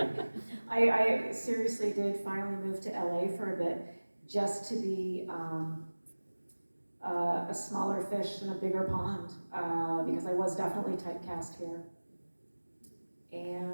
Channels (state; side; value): inverted; both; correlation -1.00